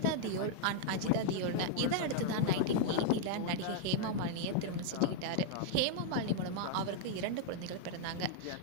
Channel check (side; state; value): both; different; correlation -0.01